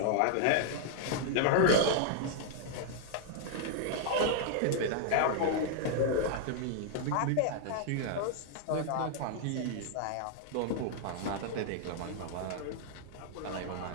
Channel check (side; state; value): both; different; correlation -0.01